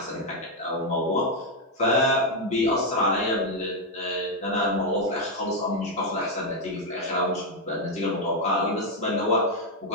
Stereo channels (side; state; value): both; normal; correlation 0.01